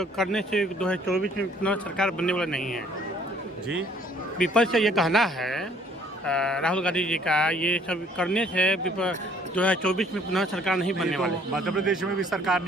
करने से 2024 में पुनः सरकार बनने वाला नहीं है। जी, विपक्ष का ये कहना है राहुल गांधी जी का, ये सब करने से 2024 में पुनः सरकार नहीं बनने वाली। मध्य प्रदेश में भी सरकार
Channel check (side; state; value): both; normal; correlation 0.59